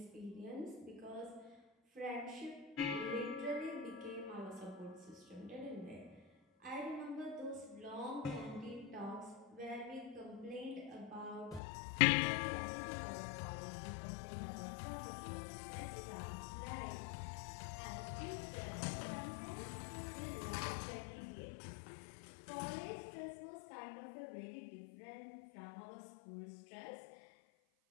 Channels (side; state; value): right; drops out; at 11.6 s